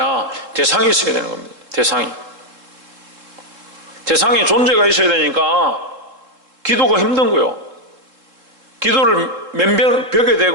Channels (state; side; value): late; left; 3.7 ms